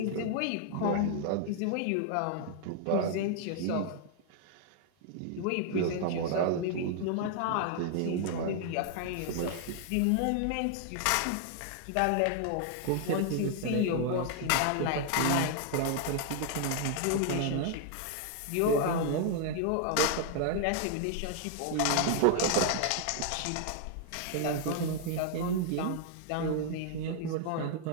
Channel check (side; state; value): both; different; correlation 0.00